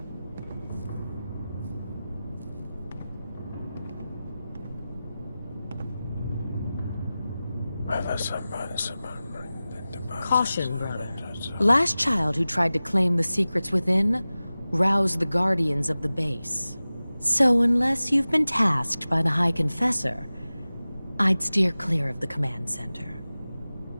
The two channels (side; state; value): both; inverted; correlation -0.96